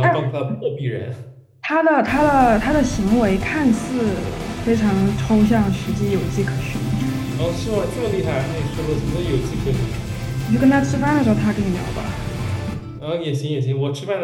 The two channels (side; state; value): both; identical; correlation 1.00